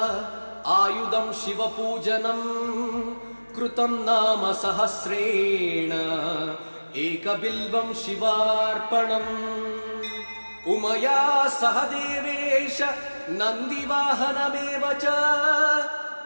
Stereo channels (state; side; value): inverted; both; correlation -1.00